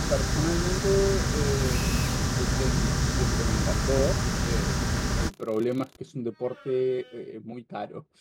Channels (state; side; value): identical; both; correlation 1.00